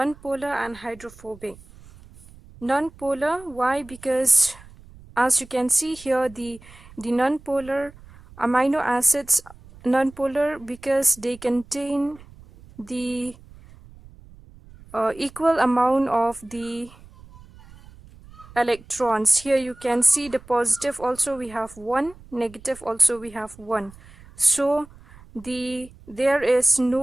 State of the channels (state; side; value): noise; right; rumble, 22 dB below the sound